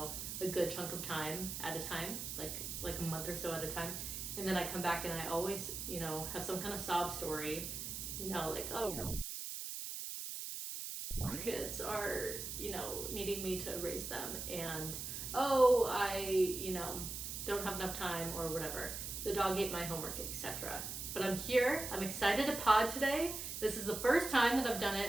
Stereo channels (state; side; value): noise; right; hiss, 5 dB below the sound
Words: a good chunk of time at a time, like a month or so at a time. And then I come back and I always, have some kind of sob story, kids are, needing me to raise them, and I, don't have enough time or whatever. The dog ate my homework, etc. But I'm here. I'm excited to pod today. This is the first time that I've done